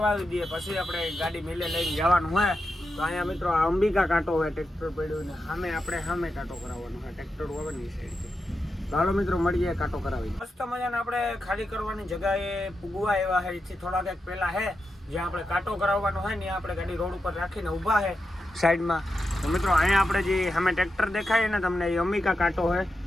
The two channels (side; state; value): both; normal; correlation 0.88